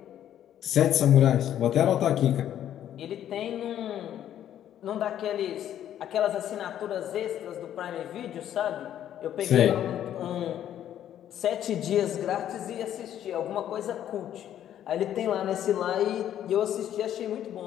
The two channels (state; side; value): quieter; right; 10.9 dB